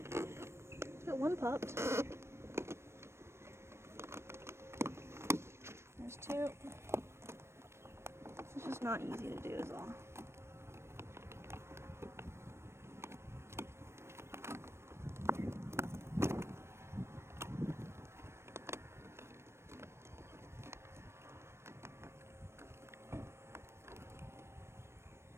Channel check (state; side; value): late; left; 0.13 ms